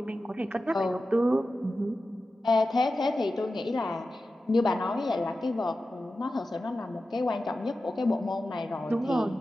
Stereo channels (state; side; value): normal; both; correlation 0.93